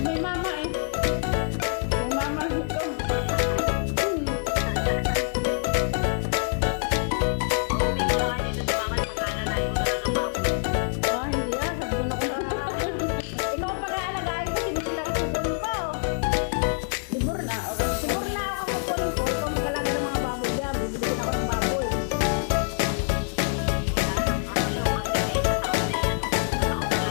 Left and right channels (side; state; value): right; silent; 61 dB below the other